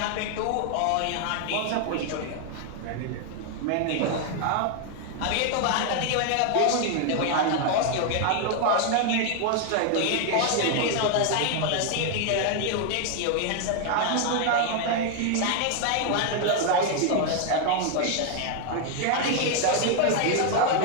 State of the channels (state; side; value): different; both; correlation 0.00